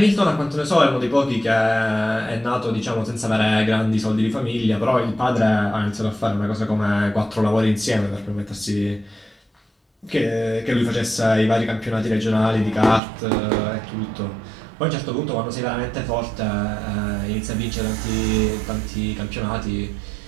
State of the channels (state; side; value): drops out; left; at 13.0 s